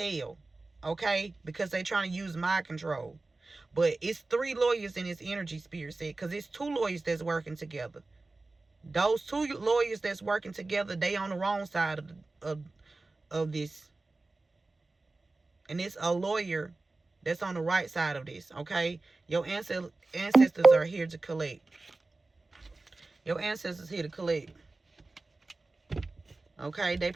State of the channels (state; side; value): quieter; left; 3.3 dB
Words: Okay? Because they trying to use mind control. But it's 3 lawyers in this energy, Spirit said, because it's 2 lawyers that's working together. Those 2 lawyers that's working together, they on the wrong side of this. And it's a lawyer that's on the right side of this, okay? Your ancestors are here to collect. Your ancestors here to collect. Okay? They